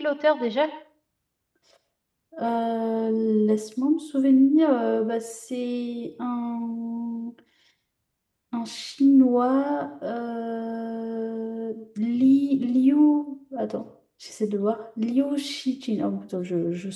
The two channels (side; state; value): both; identical; correlation 1.00